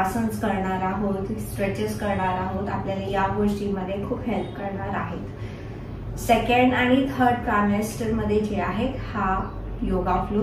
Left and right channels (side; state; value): both; identical; correlation 1.00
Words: करणार आहोत, स्ट्रेचेस करणार आहोत, आपल्याला या गोष्टीमध्ये खूप हेल्प करणार आहेत. सेकंड आणि थर्ड ट्रायमेस्टरमध्ये जे आहे हा योगा